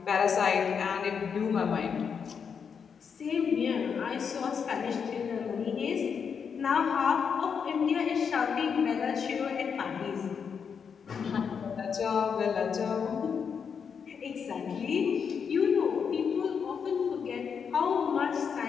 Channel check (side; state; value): right; quieter; 6.6 dB